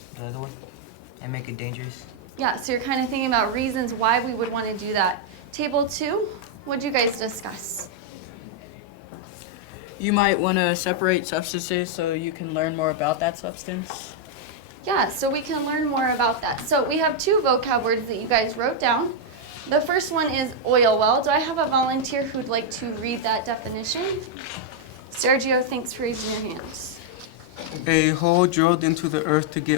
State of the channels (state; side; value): normal; both; correlation -0.02